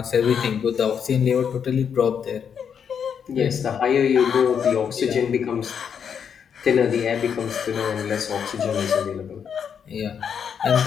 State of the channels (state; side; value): quieter; right; 7.5 dB